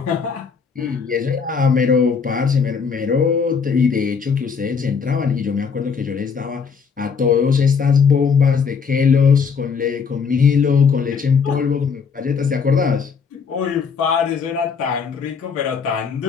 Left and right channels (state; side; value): quieter; right; 5.9 dB